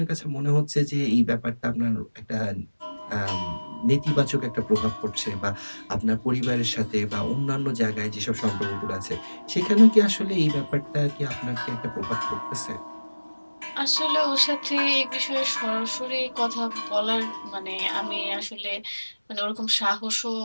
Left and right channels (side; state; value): both; inverted; correlation -1.00